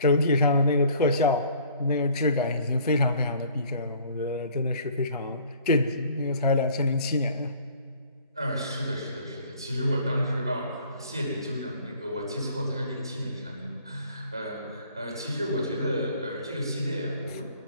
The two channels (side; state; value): both; inverted; correlation -0.54